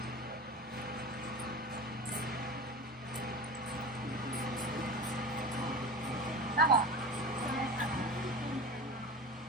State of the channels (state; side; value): normal; both; correlation 0.31